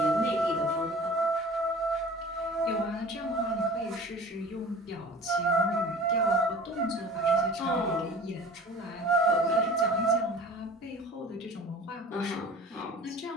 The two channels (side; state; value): both; normal; correlation 0.43